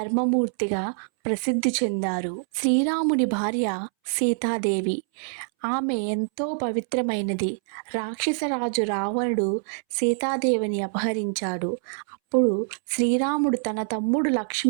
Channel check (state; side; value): silent; left; 61 dB below the other